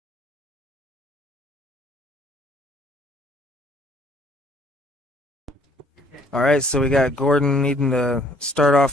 All right, so we got Gordon needing to start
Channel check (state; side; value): normal; both; correlation 0.62